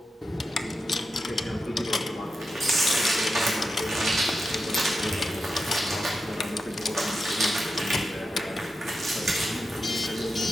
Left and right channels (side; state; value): both; normal; correlation 0.89